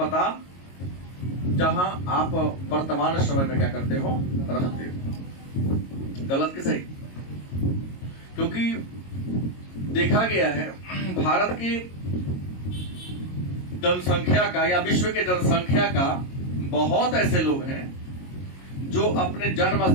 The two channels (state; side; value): late; right; 22 ms